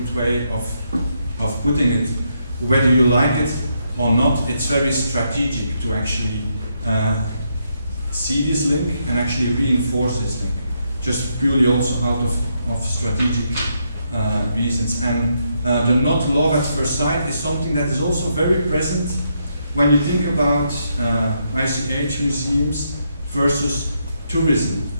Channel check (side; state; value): both; inverted; correlation -0.78